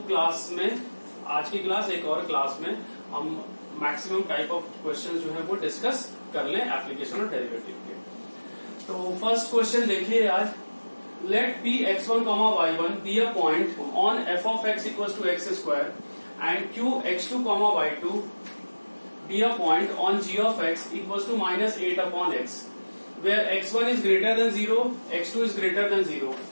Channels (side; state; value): both; inverted; correlation -1.00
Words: क्लास में, आज की क्लास एक और क्लास में, हम मैक्सिमम टाइप ऑफ क्वेश्चन जो है वो डिस्कस कर लें एप्लीकेशन ऑफ डेरिवेटिव के। तो फर्स्ट क्वेश्चन देखिए आज, late p x1, y1 be a point on f of x equals to x square and q x2, y2 be a point on g of x equals to minus 8 upon x, where x1 is greater than 0, x2 is greater than 0.